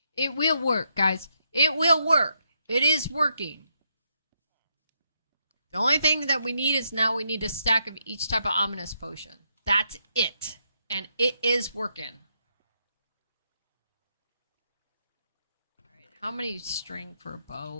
It will work, guys. It will work. It is working. The only thing that we need is now we need a stack of each type of ominous potion. That's it. And it is working. Alright, how many string for a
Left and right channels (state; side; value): inverted; both; correlation -0.78